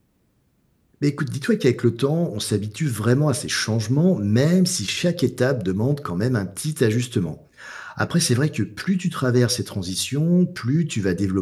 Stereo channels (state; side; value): identical; both; correlation 1.00